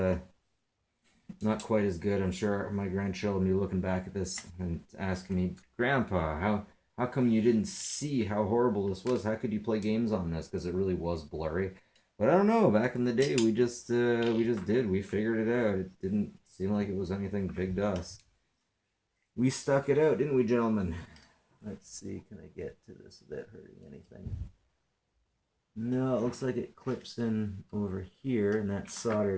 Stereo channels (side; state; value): both; identical; correlation 1.00